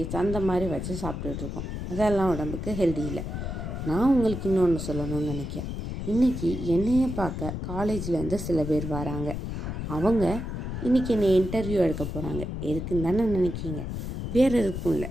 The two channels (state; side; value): noise; left; rumble, 5 dB below the sound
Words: அந்த மாதிரி வச்சு சாப்பிட்டுட்ருக்கோம். அதெல்லாம் உடம்புக்கு ஹெல்தி இல்லை. நான் உங்களுக்கு இன்னொன்று சொல்லணும்னு நினைக்கிறேன். இன்றைக்கி என்னையை பார்க்க காலேஜ்லேருந்து சில பேர் வராங்க. அவங்க இன்றைக்கி என்னை இன்டர்வியூ எடுக்க போகிறாங்க. எதுக்குன்னு தானே நினைக்கிங்க? வேறு எதுக்கும் இல்லை.